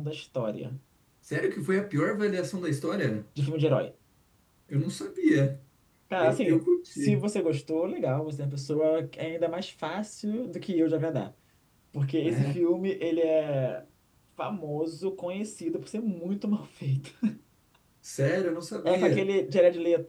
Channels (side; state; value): both; identical; correlation 1.00